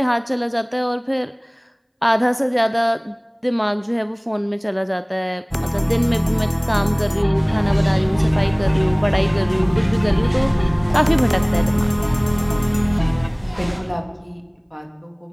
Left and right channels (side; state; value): both; identical; correlation 1.00